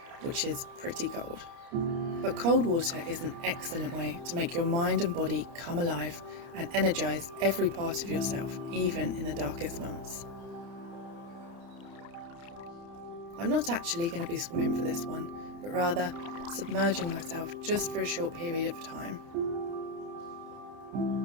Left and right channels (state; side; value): late; left; 29 ms